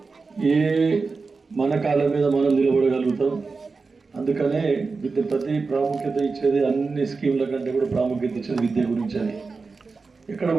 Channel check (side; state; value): left; quieter; 4.3 dB